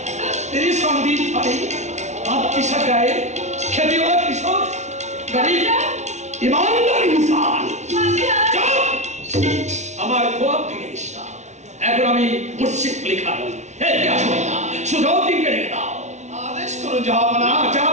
तेरी संदीप भाई आप किसा गाए खेती वाला किशोर गरीब ईमानदार इंसान আমার খোয়াব ভেঙে দিস না। এখন আমি মুর্শিদ লেখা নই। কি আসবে না শুধাও দিনকে রেখে দাও। আদেশ করুন জাহাপনা।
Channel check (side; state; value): left; late; 0.33 ms